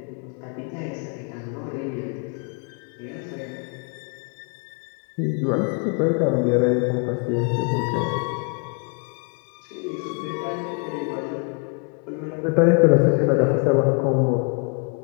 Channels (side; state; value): right; quieter; 36.2 dB